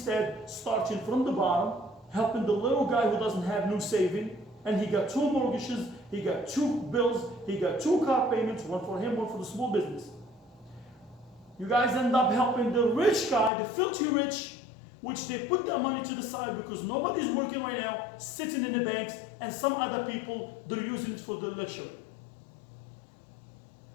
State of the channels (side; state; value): right; drops out; at 13.5 s